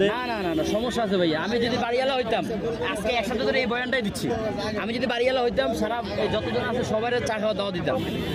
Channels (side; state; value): both; identical; correlation 1.00